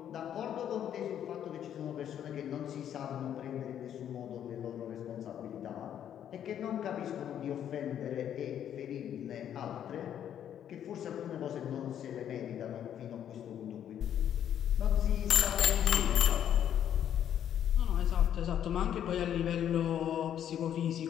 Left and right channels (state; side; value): quieter; right; 9.9 dB